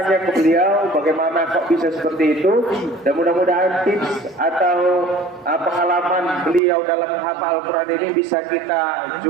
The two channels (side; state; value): left; drops out; at 6.6 s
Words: ke beliau bagaimana kok bisa seperti itu, dan mudah-mudahan tips atau pengalaman beliau dalam menghafal Al-Quran ini bisa kita